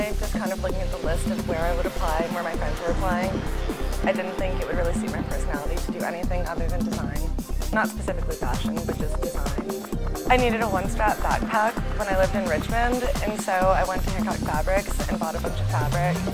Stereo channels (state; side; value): identical; both; correlation 1.00